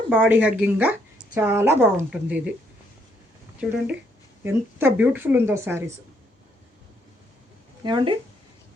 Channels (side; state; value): both; normal; correlation 0.71